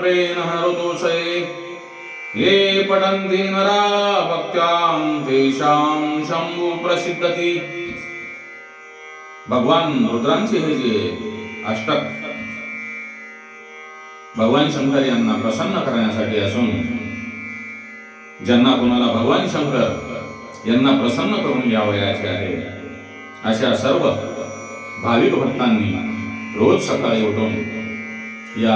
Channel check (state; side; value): identical; both; correlation 1.00